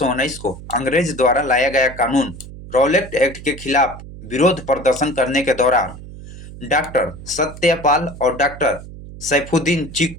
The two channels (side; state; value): right; noise; hum, 14 dB below the sound